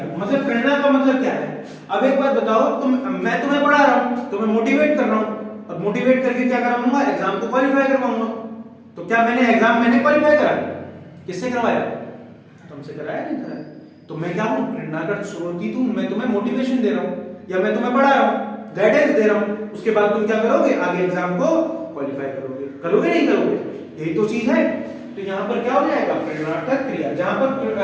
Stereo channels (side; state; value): both; identical; correlation 1.00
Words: मतलब प्रेरणा का मतलब क्या है? अब एक बात बताओ, मैं तुम्हें पढ़ा रहा हूं, तुम्हें मोटिवेट कर रहा हूं। अब मोटिवेट करके क्या कराऊंगा? एग्जाम को क्वालिफाई करवाऊंगा। तो क्या मैंने क्वालिफाई कराया? किससे करवाया? तुमसे कराया? नहीं कराया। तो मैं क्या हूं? प्रेरणा का स्रोत हूं। मैं तुम्हें मोटिवेशन दे रहा हूं या मैं तुम्हें पढ़ा रहा हूं, गाइडेंस दे रहा हूं। उसके बाद तुम क्या करोगे? आगे एग्जाम को क्वालिफाई करोगे नहीं करोगे? यही तो चीज है। तो यहां पर क्या हो जाएगा? प्रेरणार्थक क्रिया। जहां पर